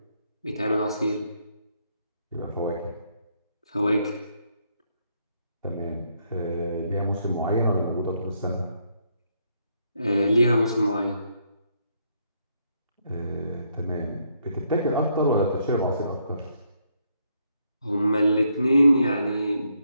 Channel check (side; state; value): both; inverted; correlation -0.74